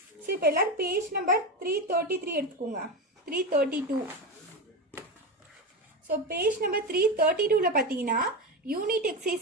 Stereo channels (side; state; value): both; normal; correlation 0.18